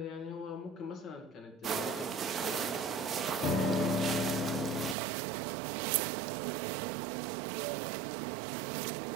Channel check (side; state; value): left; drops out; at 5.0 s